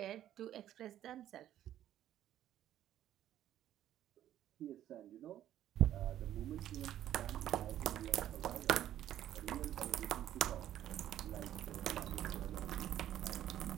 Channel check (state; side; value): quieter; left; 11.9 dB